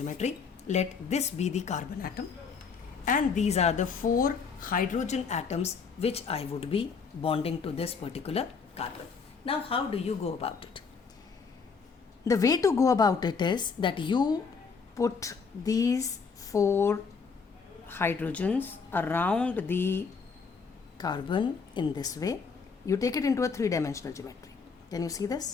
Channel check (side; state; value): right; quieter; 5.4 dB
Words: Let this be the carbon atom and these are the 4 hydrogen atoms which I would be bonding to this particular carbon. Now how do you go about it? The way to go about it is that you put these 4 hydrogens around the carbon in this way. You take it into a three-dimensional geometry. Can you see